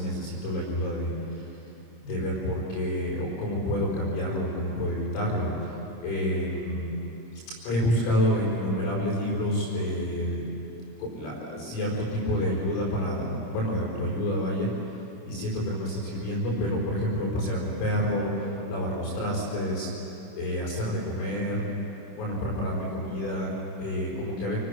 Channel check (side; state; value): right; late; 26 ms